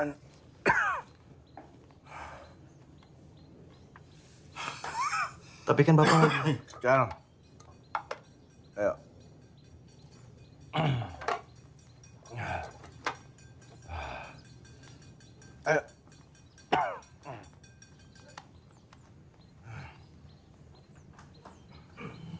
Tapi kan Bapak... Cal. Ayo. Ayo.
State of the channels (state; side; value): identical; both; correlation 1.00